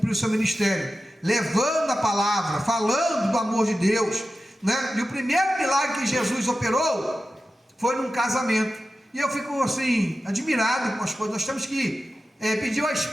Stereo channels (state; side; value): normal; both; correlation 0.94